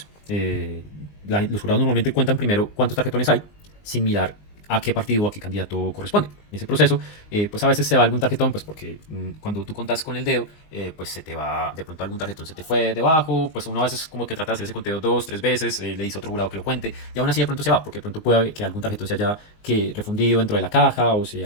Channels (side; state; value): right; late; 19 ms